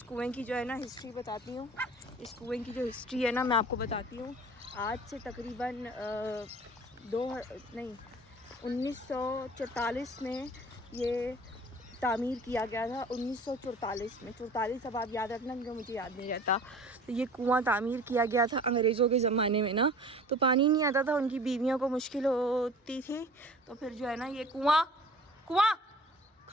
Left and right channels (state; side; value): normal; both; correlation 0.45